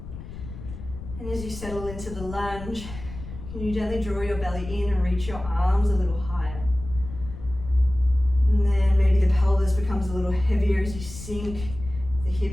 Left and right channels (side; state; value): left; noise; rumble, 12 dB below the sound